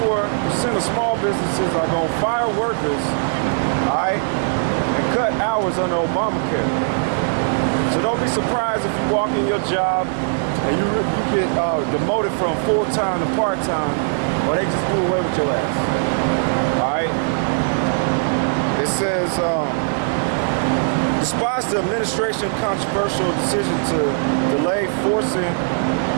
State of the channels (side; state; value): left; silent; 58 dB below the other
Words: of small businesses are going to fire workers, all right, and cut hours under Obamacare. So don't be surprised if you walk in your job and you get demoted from full-time to part-time, or they just do away with your ass. All right? It says, despite the administration's controversial decision to delay forcing